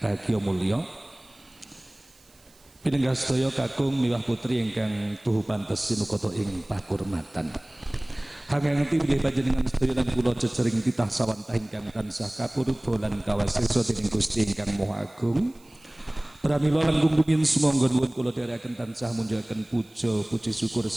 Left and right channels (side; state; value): right; noise; hiss, 29 dB below the sound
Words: bahagia mulya. Pinenggah sedaya kakung miwah putri ingkang tuhu pantes sinukata ing pakurmatan. Hanging pilih panjenengan sedaya lan kula cecering titah sawantah ingkang tansah kapurba lan kawasesa dening Gusti ingkang Maha Agung. Pramila langkung rumiyin sumangga nuwun kula dherekaken tansah munjukaken puja puji syukur